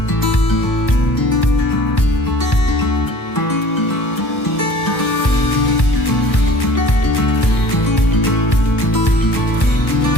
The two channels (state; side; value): late; right; 1.1 ms